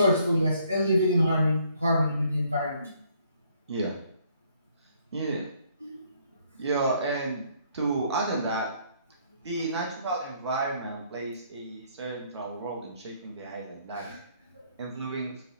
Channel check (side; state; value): both; inverted; correlation -0.66